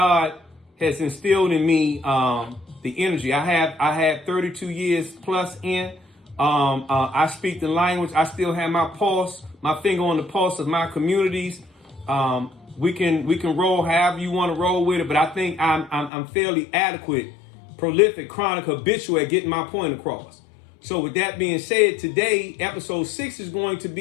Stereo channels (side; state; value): right; drops out; at 16.1 s